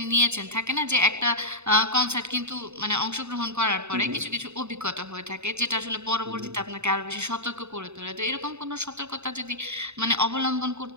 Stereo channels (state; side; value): late; left; 0.82 ms